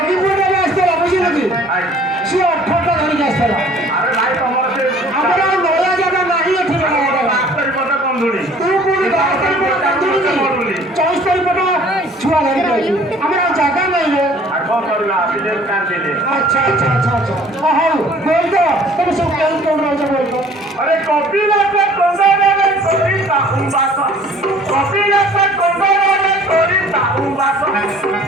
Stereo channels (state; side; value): normal; both; correlation 0.53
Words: अरे कपिला पे कोंडोरे कोरिता उंबासा कपिला पे कोंडोरे कोरिता उंबासा